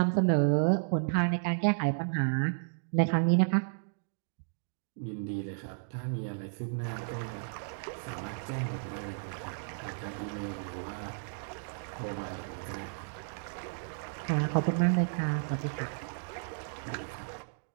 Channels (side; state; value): left; silent; digital silence